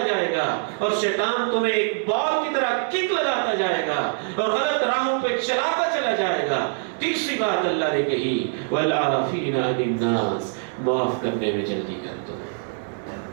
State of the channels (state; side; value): silent; left; digital silence